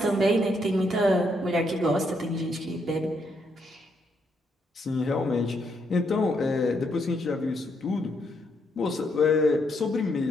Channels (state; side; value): normal; both; correlation 0.76